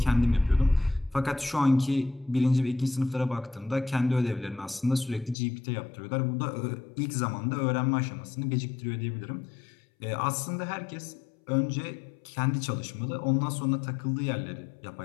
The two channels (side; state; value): right; drops out; at 5.4 s